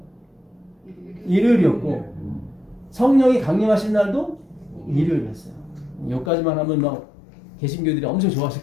일요일이었고 성령이 강림하신 날도 일요일이었어요. 여기까지만 하면 막 개신교들이 엄청 좋아하실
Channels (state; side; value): drops out; right; at 6.3 s